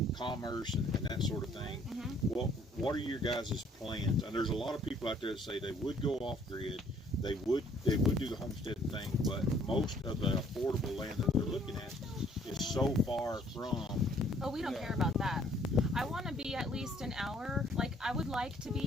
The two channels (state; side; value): normal; both; correlation 0.61